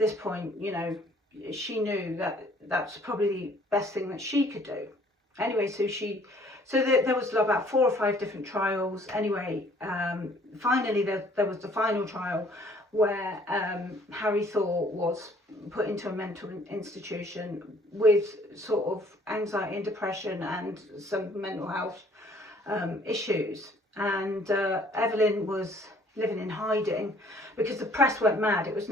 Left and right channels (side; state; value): both; normal; correlation 0.58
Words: point, you know, she knew that that's probably the best thing that she could do. Anyway, so she So there was about 4 or 5 different trials. Anyway, finally there was the final trial where Harry Thor was put into a mental institution with sort of anxiety and depression and some mental health issues. And Evelyn was living in hiding because the press went mad. It was